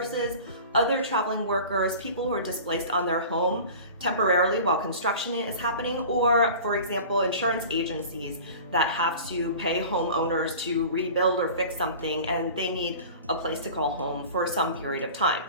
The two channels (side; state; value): both; inverted; correlation -0.39